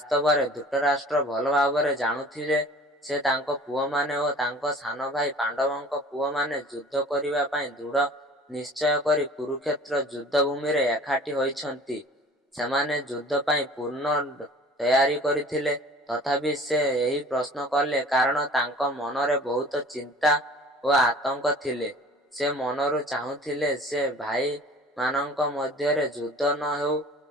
ଧୃତରାଷ୍ଟ୍ର ଭଲ ଭାବରେ ଜାଣୁଥିଲେ ଯେ ତାଙ୍କ ପୁଅମାନେ ଓ ତାଙ୍କ ସାନ ଭାଇ ପାଣ୍ଡବଙ୍କ ପୁଅମାନେ ଯୁଦ୍ଧ କରିବା ପାଇଁ ଦୃଢ଼ ନିଶ୍ଚୟ କରି କୁରୁକ୍ଷେତ୍ର ଯୁଦ୍ଧଭୂମିରେ ଏକାଠି ହୋଇଛନ୍ତି। ସେମାନେ ଯୁଦ୍ଧ ପାଇଁ ପୂର୍ଣ୍ଣ ତୟାରୀ କରିଥିଲେ। ତଥାପି ସେ ଏହି ପ୍ରଶ୍ନ କଲେ କାରଣ ତାଙ୍କ ମନରେ ବହୁତ ଚିନ୍ତା ଓ ଆତଙ୍କ ଥିଲେ। ସେ ମନରୁ ଚାହୁଁଥିଲେ ଯେ ଭାଇମାନଙ୍କ ମଧ୍ୟରେ ଯୁଦ୍ଧ ନ ହେଉ।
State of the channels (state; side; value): normal; both; correlation 0.46